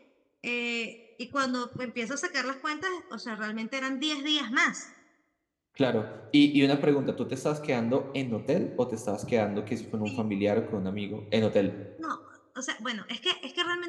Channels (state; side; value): identical; both; correlation 1.00